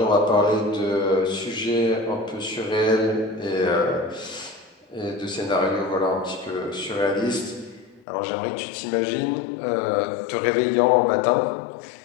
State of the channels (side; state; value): right; drops out; at 8.1 s